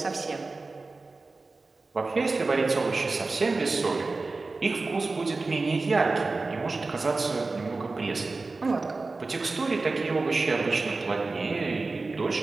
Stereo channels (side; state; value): left; quieter; 3.7 dB